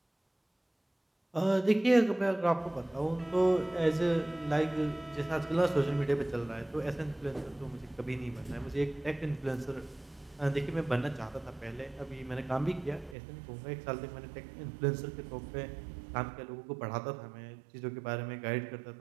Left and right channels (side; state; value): left; drops out; at 13.2 s